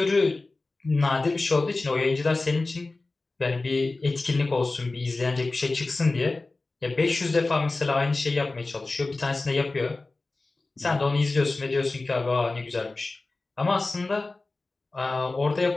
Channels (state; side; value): quieter; right; 3.3 dB